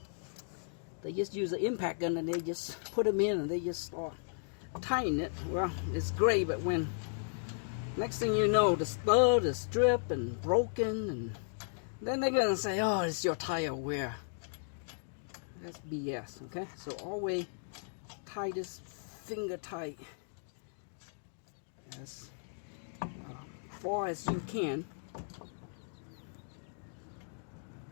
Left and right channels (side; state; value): right; silent; digital silence